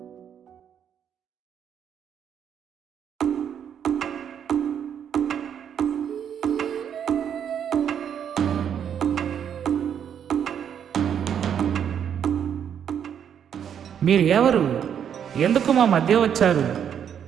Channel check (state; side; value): quieter; left; 8.6 dB